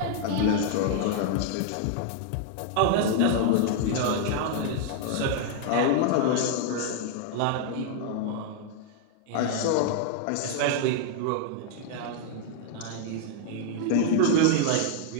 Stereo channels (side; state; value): both; different; correlation 0.00